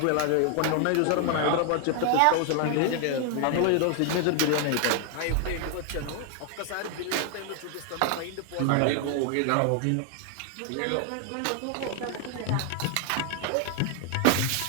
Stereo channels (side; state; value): both; different; correlation 0.00